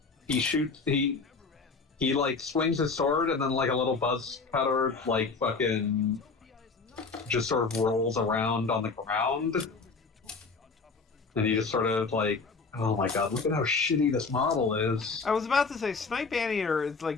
he like, swings his sword, and then, like, a little buzz cutter, like, fucking just sort of rolls around on the ground. And he just sort of, like, oh my god, look at how shitty this model is. I was about to say, Snipe Anteater is,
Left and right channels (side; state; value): right; quieter; 4.4 dB